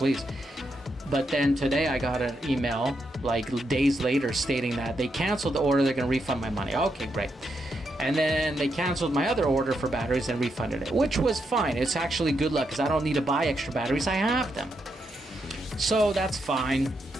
But then today I got an email, like days later, stating that they canceled the order, they're going to refund my money. Okay, great. And then they canceled my other order for batteries and refunded it, which was fine. It's actually good luck because I don't need to buy extra batteries. I have them. So that's fine.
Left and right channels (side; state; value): both; normal; correlation 0.82